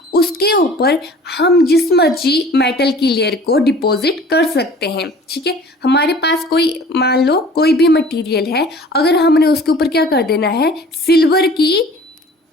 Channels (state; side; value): normal; both; correlation 0.47